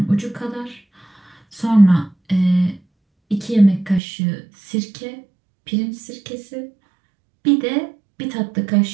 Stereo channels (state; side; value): drops out; left; at 4.0 s